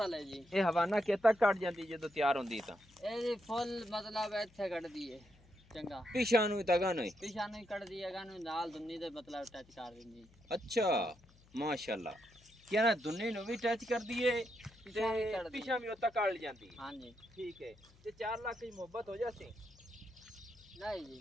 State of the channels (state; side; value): noise; left; hum, 27 dB below the sound